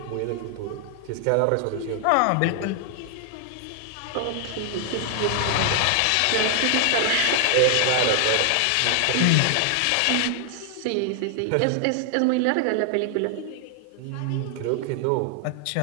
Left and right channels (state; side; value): different; both; correlation 0.00